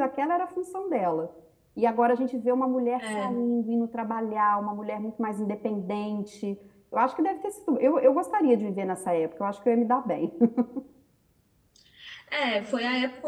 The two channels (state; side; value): identical; both; correlation 1.00